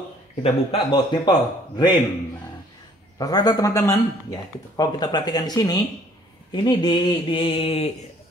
Kita buka baut nipple drain. Nah, rata-rata teman-teman, ya kalau kita perhatikan di sini, ini di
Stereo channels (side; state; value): both; normal; correlation 0.59